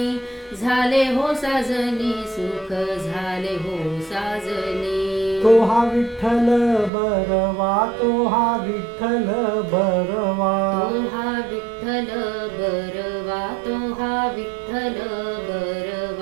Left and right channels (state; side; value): drops out; left; at 6.9 s